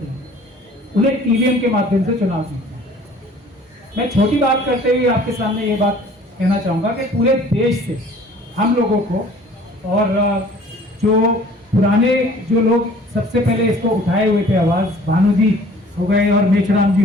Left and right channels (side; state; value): both; normal; correlation 0.51